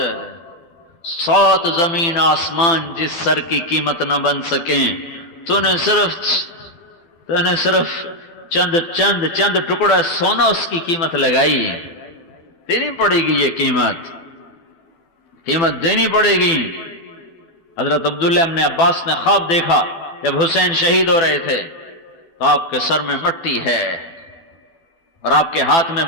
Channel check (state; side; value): late; right; 12 ms